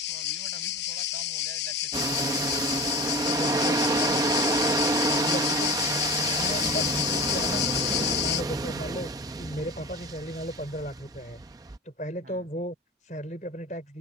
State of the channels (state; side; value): normal; both; correlation 0.33